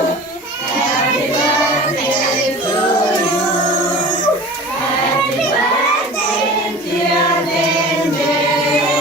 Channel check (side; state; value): both; normal; correlation 0.39